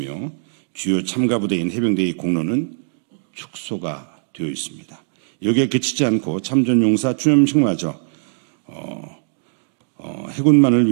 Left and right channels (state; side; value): silent; left; digital silence